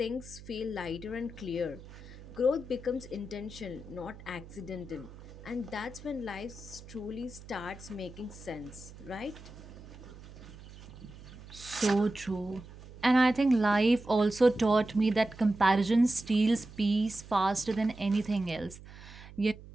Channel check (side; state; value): right; noise; hum, 17 dB below the sound